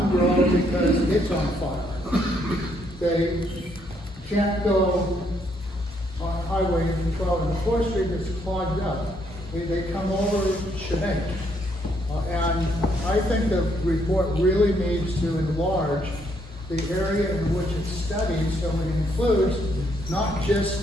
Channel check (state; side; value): normal; both; correlation 0.72